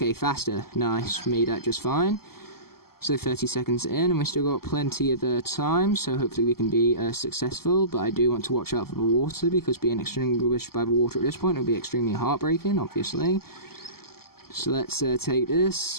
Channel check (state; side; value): late; right; 0.94 ms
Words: faster, nice, made that just fine. So 30 seconds in, and we've still got plenty of time, so hopefully we can be successful, but I do want to watch out for the water, because being extinguished by the water at this point will be extremely heartbreaking, obviously. So let's take